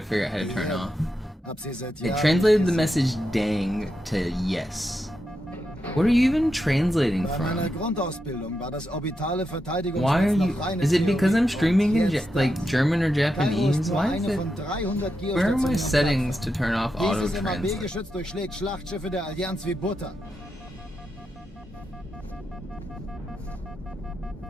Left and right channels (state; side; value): normal; both; correlation 0.86